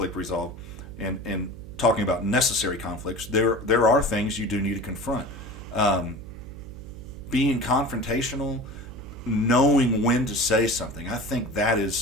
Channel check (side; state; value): right; noise; hum, 14 dB below the sound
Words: resolve and talking about necessary conflicts, there are things you do need to confront. Being confrontational, knowing when to say something. I think that